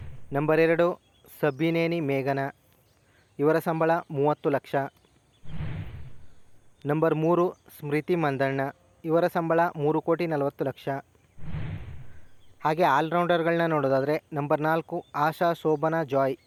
ನಂಬರ್ 2 ಸಬ್ಬಿನೇನಿ ಮೇಘನಾ, ಇವರ ಸಂಬಳ 30 ಲಕ್ಷ. ನಂಬರ್ 3 ಸ್ಮೃತಿ ಮಂದಣ್ಣ, ಇವರ ಸಂಬಳ 3,40,00,000. ಹಾಗೆ ಆಲ್ರೌಂಡರ್ಗಳನ್ನ ನೋಡೋದಾದರೆ ನಂಬರ್ 4 ಆಶಾ ಶೋಭನಾ ಜಾಯ್,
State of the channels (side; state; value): both; identical; correlation 1.00